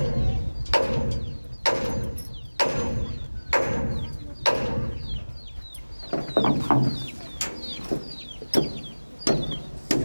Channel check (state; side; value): inverted; both; correlation -1.00